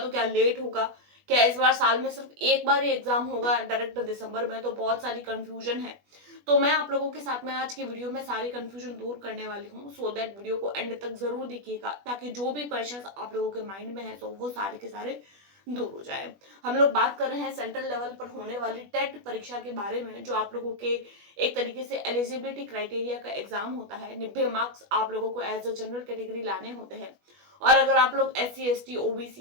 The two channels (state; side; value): late; left; 20 ms